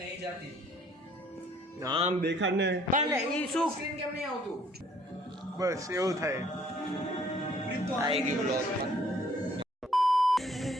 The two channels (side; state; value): both; normal; correlation 0.60